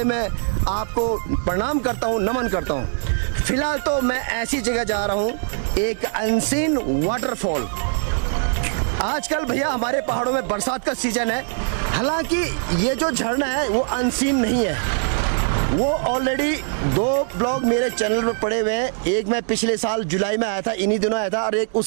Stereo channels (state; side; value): silent; left; 64 dB below the other